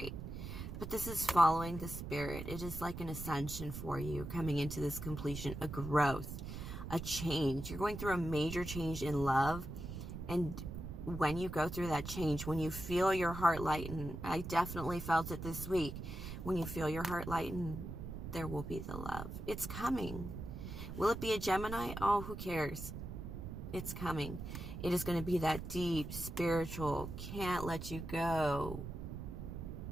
But this is following the spirit. It is like an ascension for you, coming into this completion, a growth, a change. You're going through a major change in love. And when you go through that change, when you feel your heart lighten, I definitely felt it this week. When you feel your heart lighten, there will be the love. It's coming. Will it be a Gemini? Oh, who cares? It's coming. It is going to be that deep, spiritual, can't let you go,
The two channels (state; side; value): noise; right; rumble, 7 dB below the sound